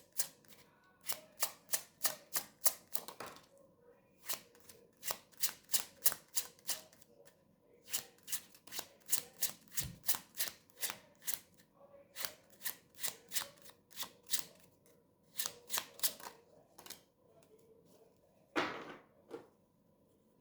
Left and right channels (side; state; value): both; identical; correlation 1.00